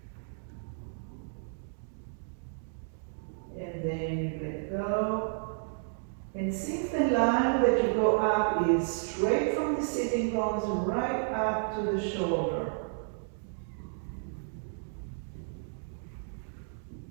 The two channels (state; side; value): silent; left; digital silence